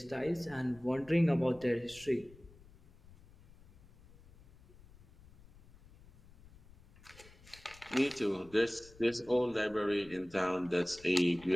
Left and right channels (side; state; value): left; noise; rumble, 23 dB below the sound